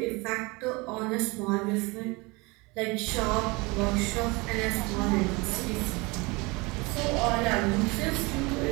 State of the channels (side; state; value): left; quieter; 25.7 dB